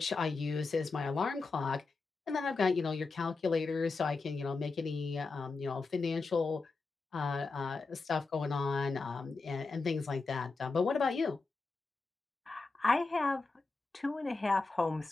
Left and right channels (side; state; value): right; quieter; 3.9 dB